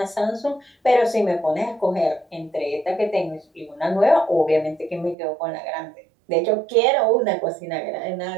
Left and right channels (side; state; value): left; drops out; at 5.2 s